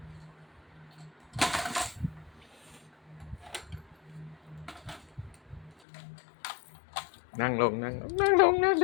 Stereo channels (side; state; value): right; drops out; at 5.8 s